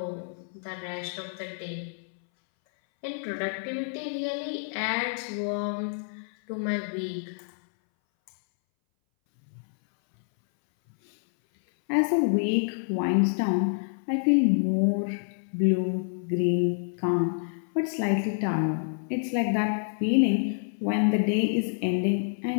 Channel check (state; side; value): silent; right; 60 dB below the other